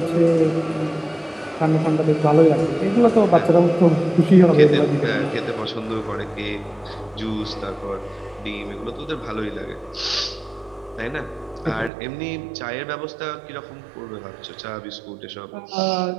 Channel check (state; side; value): drops out; left; at 11.9 s